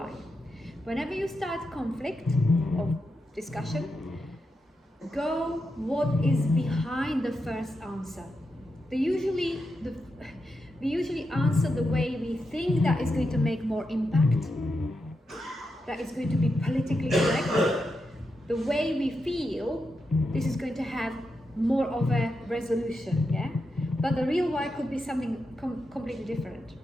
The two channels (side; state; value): both; normal; correlation 0.86